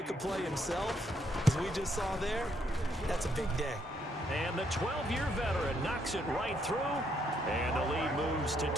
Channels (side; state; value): both; normal; correlation 0.73